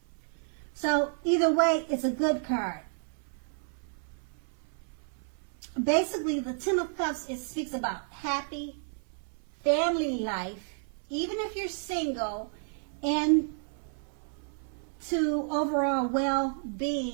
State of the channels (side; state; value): left; silent; 57 dB below the other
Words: So either way, it's a good card. Basically, the Ten of Cups, it speaks about happy family life, even if you're single, and to overall